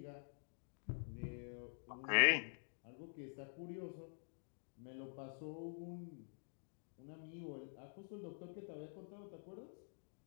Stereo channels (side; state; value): right; silent; digital silence